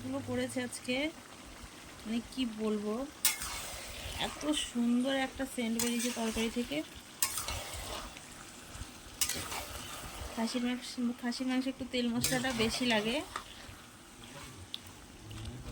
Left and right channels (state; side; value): identical; both; correlation 1.00